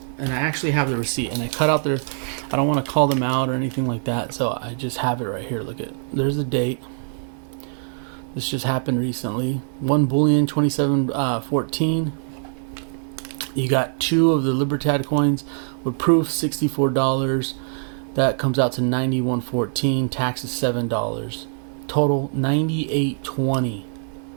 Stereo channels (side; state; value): left; silent; 63 dB below the other